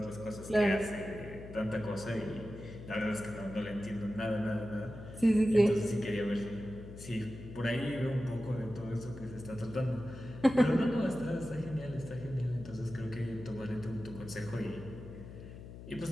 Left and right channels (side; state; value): left; noise; hum, 13 dB below the sound